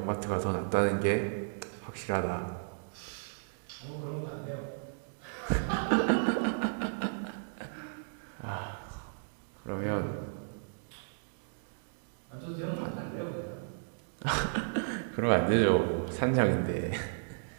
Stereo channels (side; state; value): left; silent; digital silence